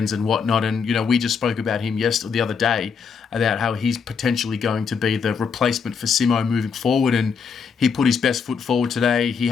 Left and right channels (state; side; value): quieter; right; 6.0 dB